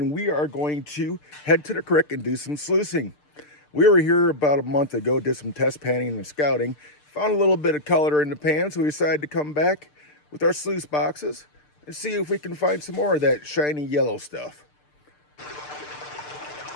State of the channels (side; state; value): right; late; 6.7 ms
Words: we are going to head to the creek and do some sluicing. We were here about a month ago, did some test panning and scouting, found a little bit of color in the pan, so we decided to come back with our sluice boxes and see if we can find some more of that shiny yellow stuff.